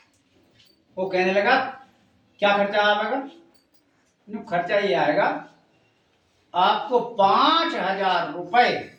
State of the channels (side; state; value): both; identical; correlation 1.00